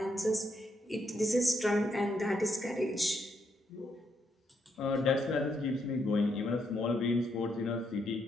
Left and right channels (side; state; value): both; normal; correlation 0.77